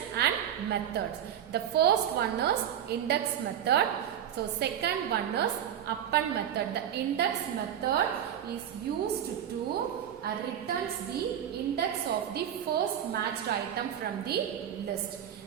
and methods. The first one is index method. So second one is append method. The index method is used to returns the index of the first matched item from the list.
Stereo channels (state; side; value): quieter; left; 9.8 dB